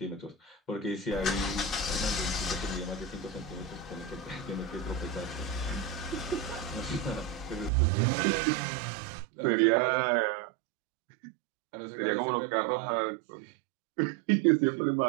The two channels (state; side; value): drops out; left; at 7.7 s